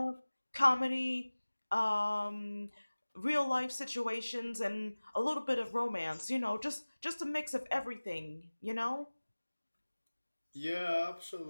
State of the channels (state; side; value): inverted; both; correlation -1.00